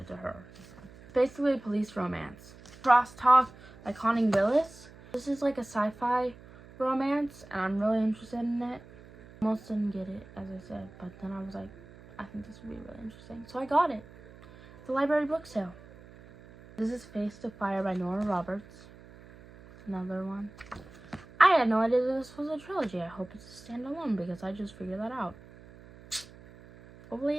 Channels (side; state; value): right; noise; hum, 21 dB below the sound